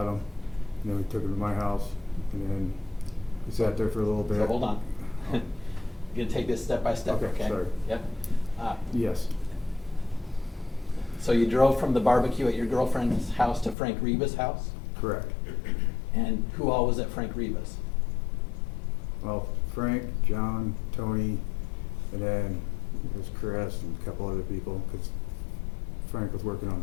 them, and then we took them to my house, and then we sat there for a little bit. So hold on. I'm gonna take this step by step, Okay, okay? sorry. Yep. Yes, So you drove from the barbecue at your girlfriend's house to Frank Reba's house? correct. And who all was at Frank Reba's? Well, Frank, John, Tony, and then there's Chris and a couple other people, because Frank was working on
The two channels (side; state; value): right; drops out; at 13.8 s